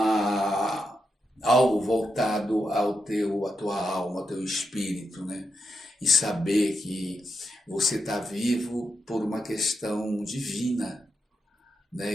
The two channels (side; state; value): both; normal; correlation 0.85